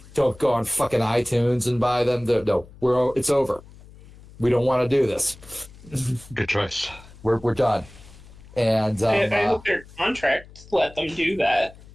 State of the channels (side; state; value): left; noise; hum, 21 dB below the sound